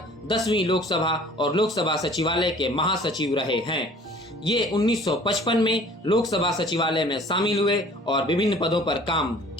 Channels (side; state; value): both; normal; correlation 0.50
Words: 10वीं लोकसभा और लोकसभा सचिवालय के महासचिव रहे हैं। ये 1955 में लोकसभा सचिवालय में शामिल हुए और विभिन्न पदों पर काम